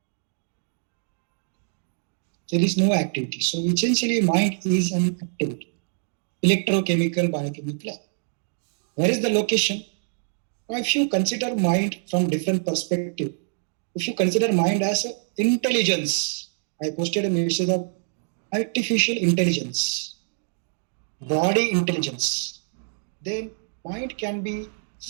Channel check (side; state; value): left; silent; digital silence